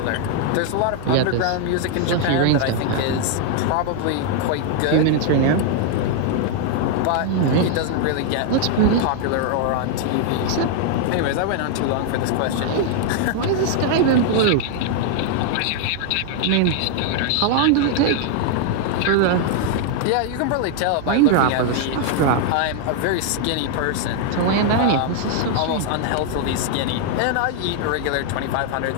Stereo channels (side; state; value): both; different; correlation 0.00